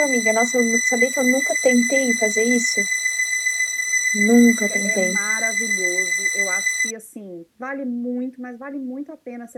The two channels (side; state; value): both; identical; correlation 1.00